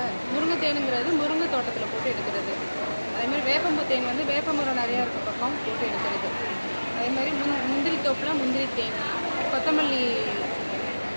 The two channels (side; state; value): both; inverted; correlation -1.00